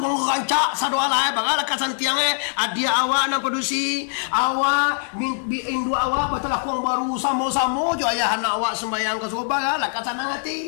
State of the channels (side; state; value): right; silent; digital silence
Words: rancak sadua lae bagala kasantiang adia awak nang produksi awak indu awak betul lakung baru samo-samo jo ayah anak awak sembayang ke subuh bagala kasanang